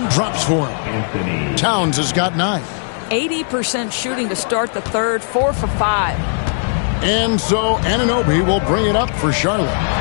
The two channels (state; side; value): silent; right; digital silence